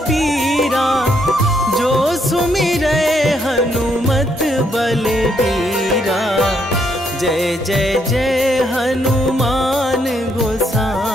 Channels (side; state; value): both; normal; correlation 0.74